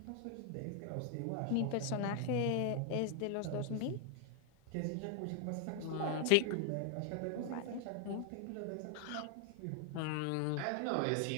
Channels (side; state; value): both; different; correlation 0.00